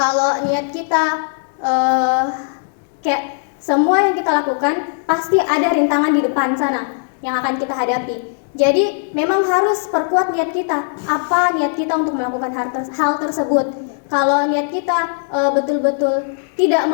niat kita kayak semua yang kita lakukan pasti ada rintangan di depan sana yang akan kita hadapi. Jadi memang harus perkuat niat kita. Apa niat kita untuk melakukan hal tersebut? Kalau niat kita betul-betul tidak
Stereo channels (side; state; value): right; silent; digital silence